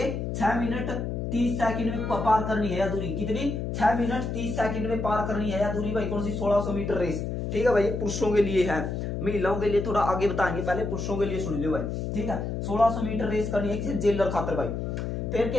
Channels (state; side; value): noise; left; hum, 3 dB below the sound